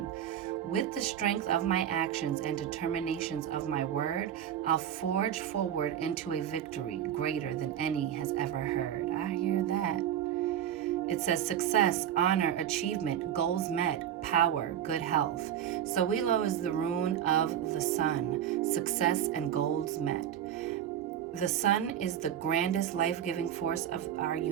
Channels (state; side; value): quieter; left; 10.1 dB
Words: With the strength of my actions and determinations of my word, I'll forge forward into a victory greater than any has ever heard. I hear that. It says success, honor, achievement, goals met, power, good health. Sowilo is the rune of the sun, success and goals met. The sun is the grandest life-giving force of our